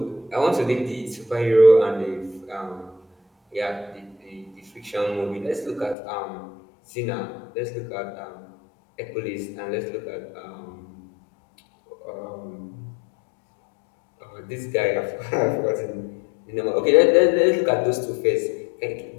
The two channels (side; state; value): right; drops out; at 6.0 s